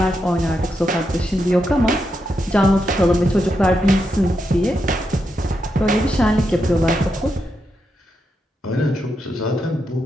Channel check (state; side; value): normal; both; correlation 0.84